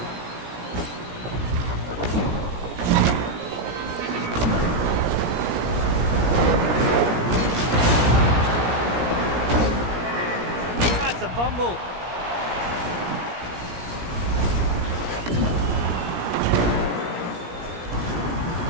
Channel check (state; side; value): late; left; 17 ms